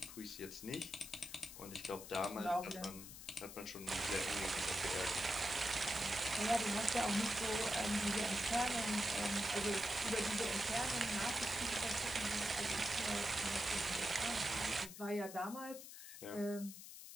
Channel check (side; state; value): left; noise; hiss, 12 dB below the sound